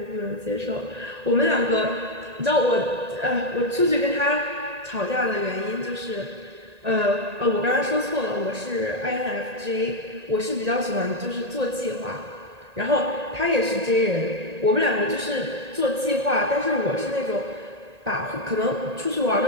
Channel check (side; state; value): left; late; 1.8 ms